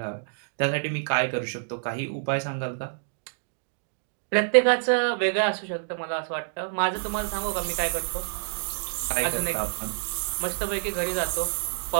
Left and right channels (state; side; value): silent; left; digital silence